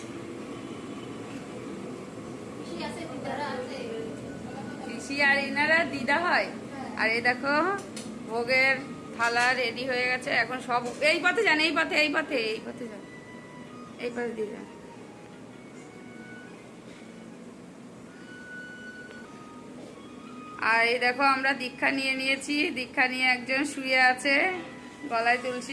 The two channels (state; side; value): identical; both; correlation 1.00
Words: পিসি আর এনারা দিদা হয়। আর এই দেখো ভোগের থালা রেডি হয়ে গেছে, এখন সব এই পথে যান, এই পথে এই পথে এই পথে যান, এই পথে দিয়ে যান। আর এই দেখো আমরা দীক্ষা নিয়ে নিয়েছি, দীক্ষা নিয়ে একজন শুয়ে আছে, গলায়